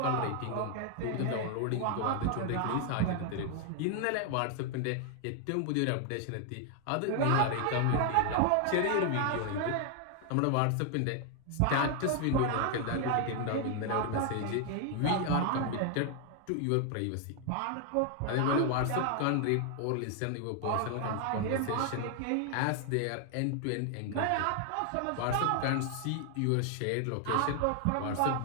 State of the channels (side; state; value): both; different; correlation 0.00